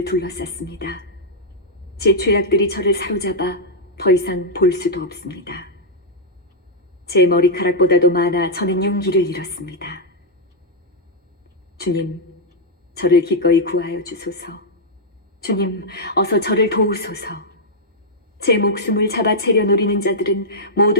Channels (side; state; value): both; normal; correlation -0.06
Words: 둘러쌌습니다. 제 죄악들이 저를 사로잡아 더 이상 볼 수도 없습니다. 제 머리카락보다도 많아 저는 용기를 잃었습니다. 주님, 저를 기꺼이 구하여 주소서. 주님, 어서 저를 도우소서. 제 목숨을 잡아채려 노리는 자들은